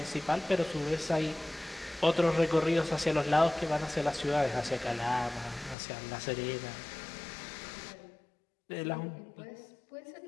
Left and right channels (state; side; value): drops out; right; at 5.8 s